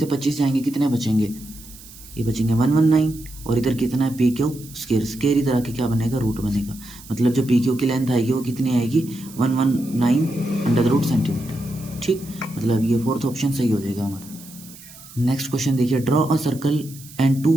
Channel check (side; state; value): right; noise; hiss, 19 dB below the sound